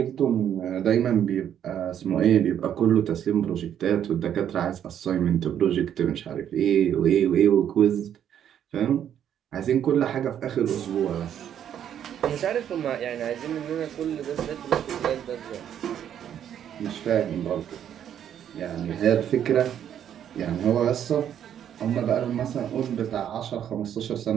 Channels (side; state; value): left; quieter; 9.7 dB